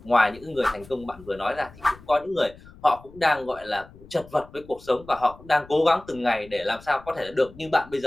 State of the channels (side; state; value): left; noise; rumble, 21 dB below the sound